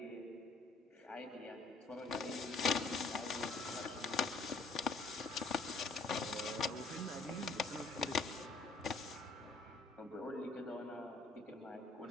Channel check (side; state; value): right; quieter; 3.5 dB